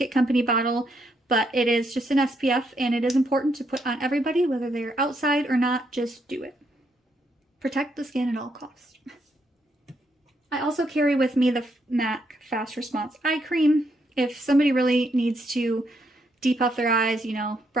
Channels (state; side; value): normal; both; correlation 0.76